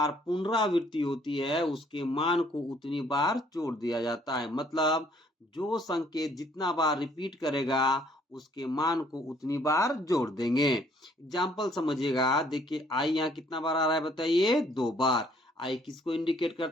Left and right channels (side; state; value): both; normal; correlation 0.63